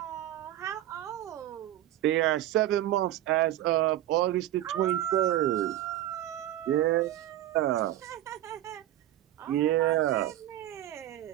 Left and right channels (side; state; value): left; quieter; 13.6 dB